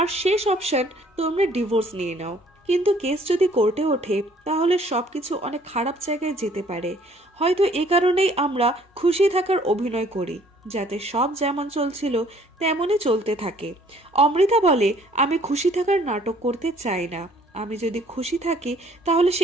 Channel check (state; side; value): normal; both; correlation 0.59